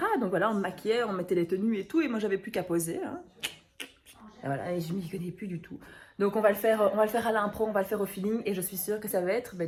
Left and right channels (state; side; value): identical; both; correlation 1.00